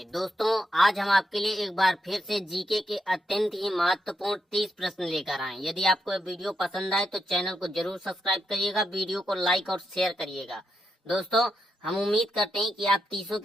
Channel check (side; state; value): both; normal; correlation 0.82